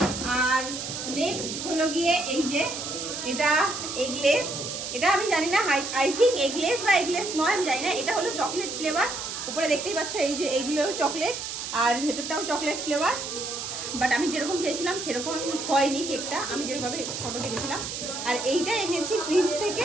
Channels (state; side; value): noise; right; hiss, 6 dB below the sound